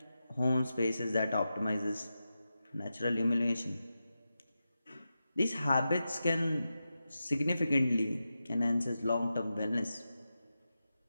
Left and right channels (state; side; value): inverted; both; correlation -0.91